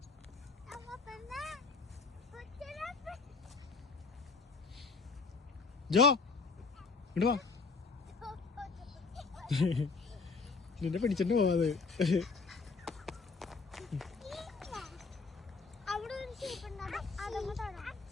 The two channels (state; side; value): quieter; right; 4.5 dB